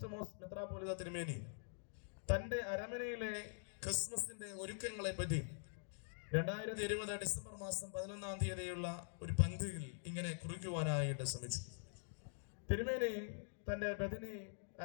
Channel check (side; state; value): right; silent; digital silence